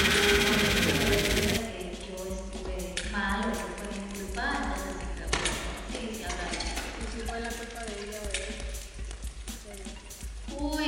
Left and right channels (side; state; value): both; identical; correlation 1.00